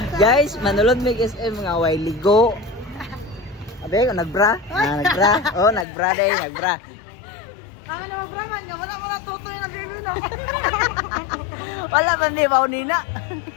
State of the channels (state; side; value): drops out; right; at 5.9 s